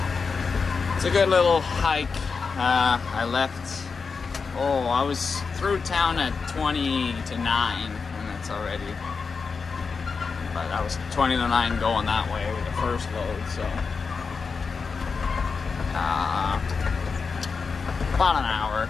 it's a good little hike. I was through town at 20 to 9, and that's already, but I was 20 to 9 going that way with the first load, so about an hour.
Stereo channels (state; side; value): quieter; right; 5.1 dB